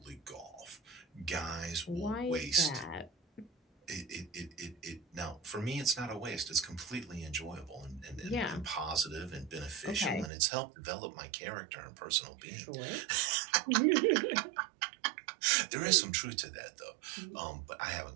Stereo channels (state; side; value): drops out; left; at 10.3 s